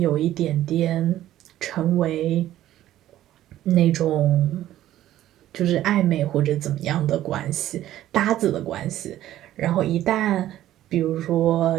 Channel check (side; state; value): left; quieter; 13.4 dB